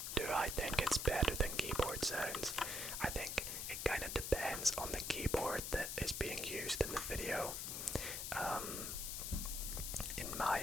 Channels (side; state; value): left; noise; hiss, 3 dB below the sound